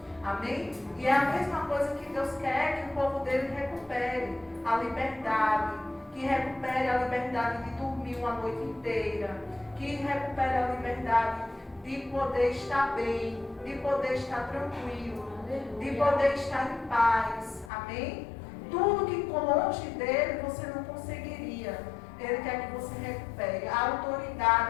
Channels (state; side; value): drops out; right; at 17.7 s